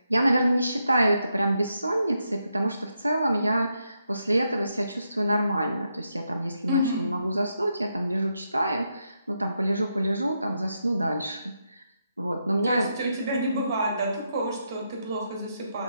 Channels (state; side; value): inverted; both; correlation -0.82